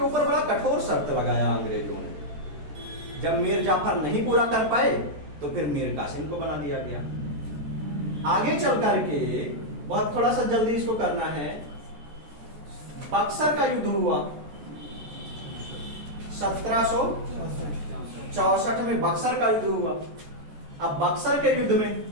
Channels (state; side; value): late; left; 14 ms